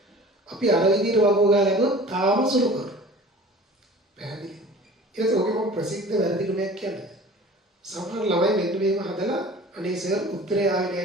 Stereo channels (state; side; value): normal; both; correlation 0.43